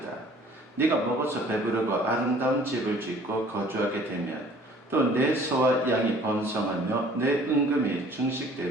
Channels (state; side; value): normal; both; correlation 0.53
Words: 네가 먹어서 배부르고 아름다운 집을 짓고 거주하게 되면 또 내 소와 양이 번성하며 내 은금이